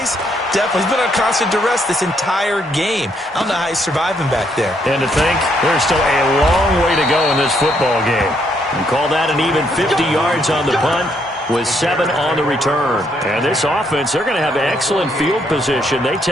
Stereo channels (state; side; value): normal; both; correlation 0.73